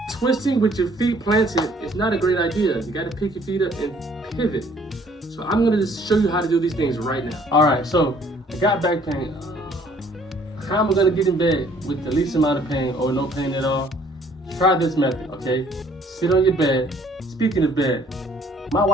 Twisting with your feet planted is not a great idea. You got to pick your feet up and pivot. So I'm going to just show you how to do these things right now. All right, so I got back pain. time we're gonna get in bed with the least amount of pain or no pain at all, try this method, okay? Sit on your bed. Speaking of bed, my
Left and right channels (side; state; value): both; normal; correlation 0.59